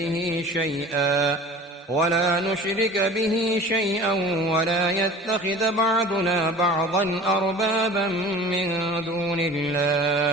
ولا نشرك به شيئا ولا يتخذ بعضنا بعضا أربابا من دون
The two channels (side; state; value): both; normal; correlation 0.41